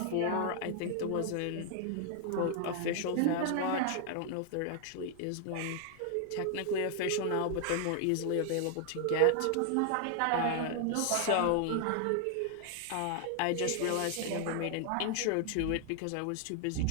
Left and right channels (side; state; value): both; different; correlation 0.00